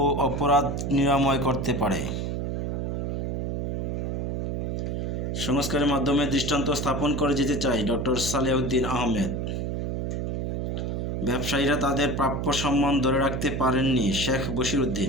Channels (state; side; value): noise; right; hum, 2 dB below the sound